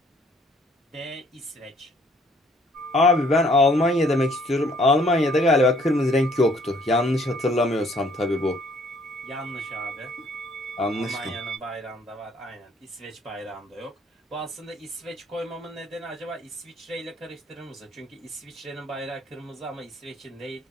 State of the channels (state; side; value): normal; both; correlation 0.62